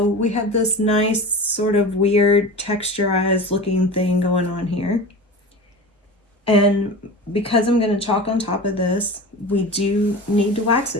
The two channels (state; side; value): normal; both; correlation 0.32